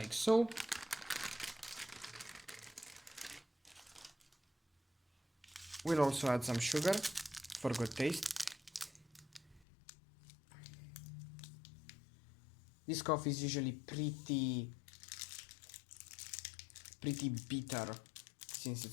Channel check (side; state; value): right; drops out; at 9.7 s